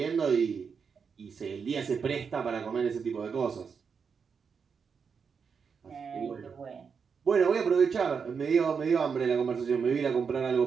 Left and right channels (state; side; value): quieter; left; 6.1 dB